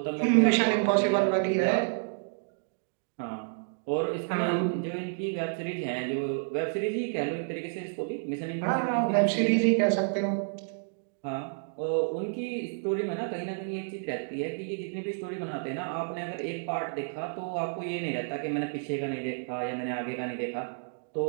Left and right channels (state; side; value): silent; left; digital silence